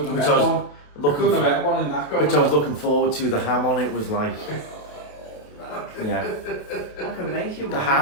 have which met I was one. looking Couldn't have for, met one in that going which I was on. looking forward to. The ham on it was like, yeah, I can make you one. the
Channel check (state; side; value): late; right; 28 ms